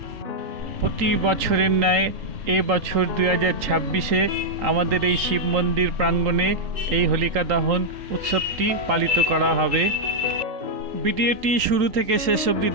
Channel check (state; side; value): late; left; 3.8 ms